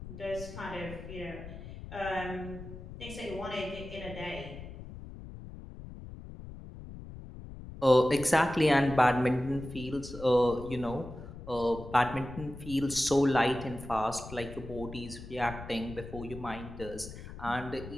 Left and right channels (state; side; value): noise; left; rumble, 13 dB below the sound